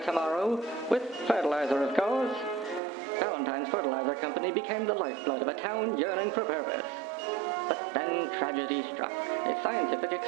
tomorrow? With fertilizer, of course. Valentine's Fertilizer Company became the lifeblood of a town yearning for purpose. But then tragedy struck, a scientific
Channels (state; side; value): drops out; left; at 2.8 s